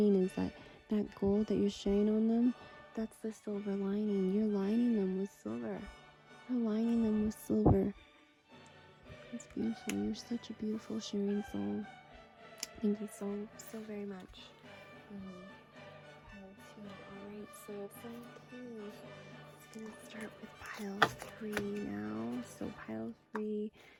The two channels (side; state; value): both; identical; correlation 1.00